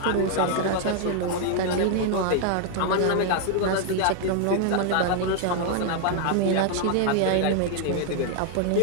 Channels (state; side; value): different; both; correlation 0.00